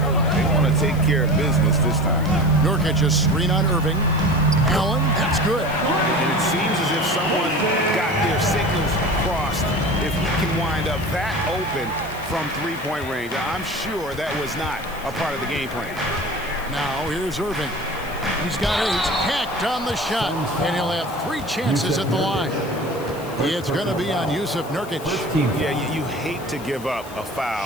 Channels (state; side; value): noise; left; hiss, 19 dB below the sound